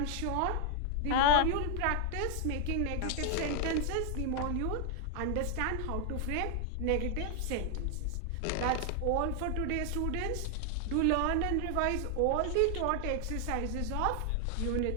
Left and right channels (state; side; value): different; both; correlation 0.00